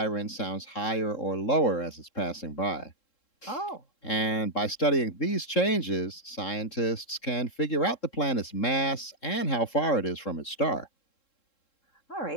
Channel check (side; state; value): right; late; 3.7 ms